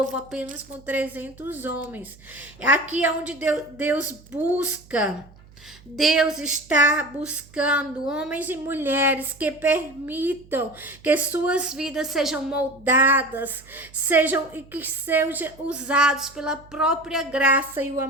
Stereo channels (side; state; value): right; noise; hum, 24 dB below the sound